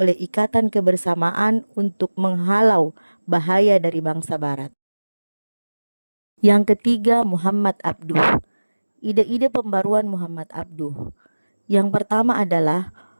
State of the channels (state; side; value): inverted; both; correlation -1.00